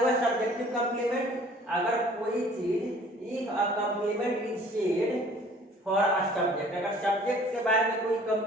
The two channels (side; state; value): both; normal; correlation 0.52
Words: सब्जेक्टिव कंप्लीमेंट। अगर कोई चीज, if a complement is said for a subject, अगर सब्जेक्ट के बारे में कोई